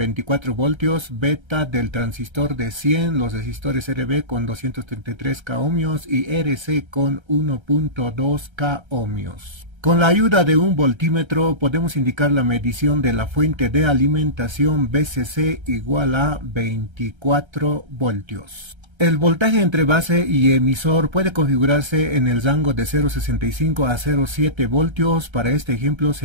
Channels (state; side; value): late; left; 1.3 ms